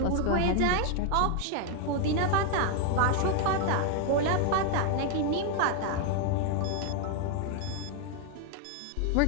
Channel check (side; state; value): both; different; correlation 0.00